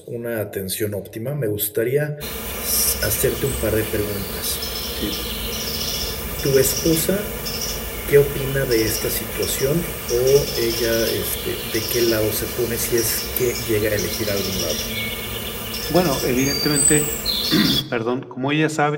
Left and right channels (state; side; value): identical; both; correlation 1.00